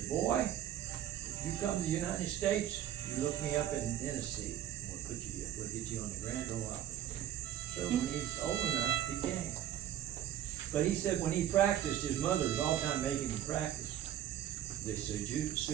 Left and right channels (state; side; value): quieter; left; 11.4 dB